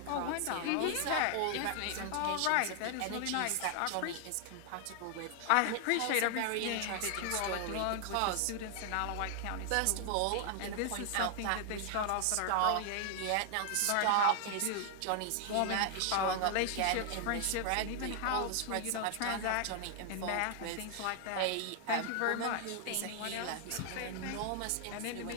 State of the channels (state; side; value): different; both; correlation 0.00